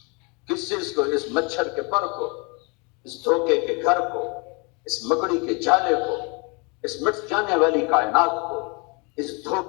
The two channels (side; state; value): right; quieter; 31.4 dB